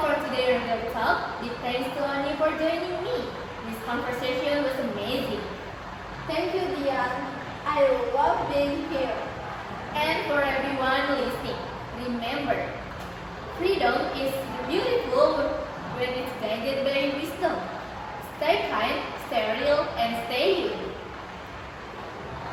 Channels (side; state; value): both; identical; correlation 1.00